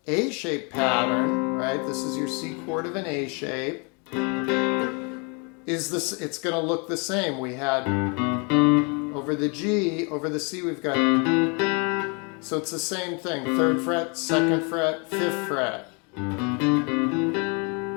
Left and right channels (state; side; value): quieter; right; 33.5 dB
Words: A shape pattern, right? This is your C chord of an A shape. It's going to look the same. We had over the G, over the C, we've got, so it's the same thing. 3rd fret, 2nd fret, 5th fret.